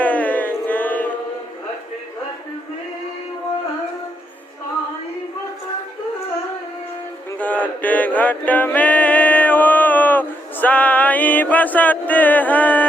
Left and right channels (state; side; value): normal; both; correlation 0.78